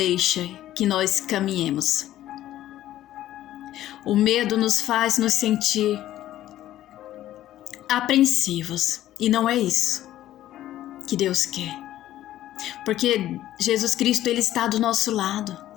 que nós caminhemos. O medo nos faz nos sentir apreensivos, e não é isso. que Deus quer. Porque Jesus Cristo, Ele está do nosso lado.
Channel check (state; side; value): quieter; right; 13.5 dB